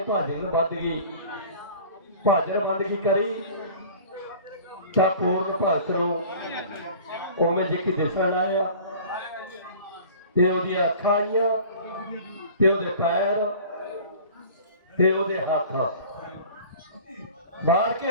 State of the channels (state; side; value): inverted; both; correlation -0.44